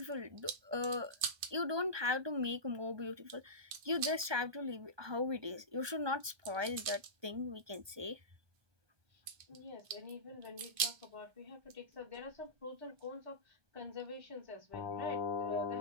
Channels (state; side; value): late; left; 1.2 ms